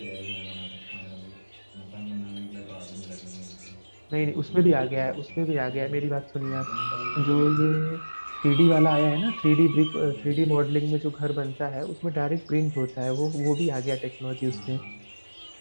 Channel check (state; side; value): inverted; both; correlation -1.00